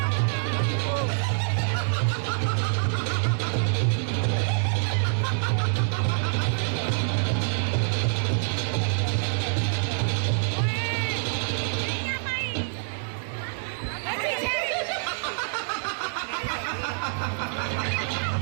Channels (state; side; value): silent; left; 60 dB below the other